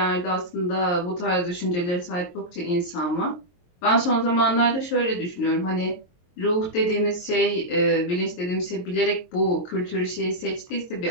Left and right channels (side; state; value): right; late; 23 ms